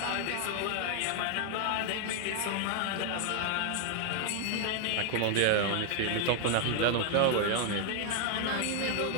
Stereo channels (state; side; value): different; both; correlation 0.00